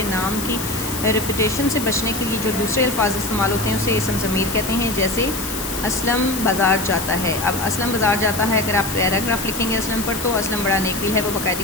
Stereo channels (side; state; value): left; noise; hiss, 6 dB below the sound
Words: नाम की रेपुटेशन से बचने के लिए जो दूसरे अल्फाज इस्तेमाल होते हैं उसे इसम ज़मीर कहते हैं। जैसे असलम बाज़ार जाता है। अब असलम बाज़ार जाता है, अगर आप पैराग्राफ लिखेंगे असलम पर तो असलम बड़ा नेक दिल है, वो